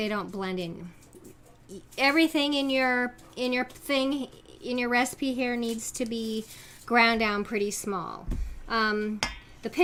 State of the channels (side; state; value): both; identical; correlation 1.00